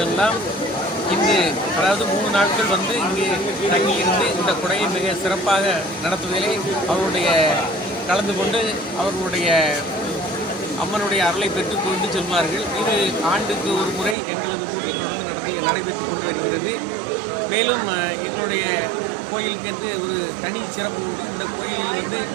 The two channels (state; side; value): drops out; left; at 14.2 s